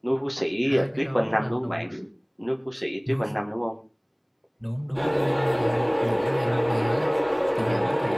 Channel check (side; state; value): both; identical; correlation 1.00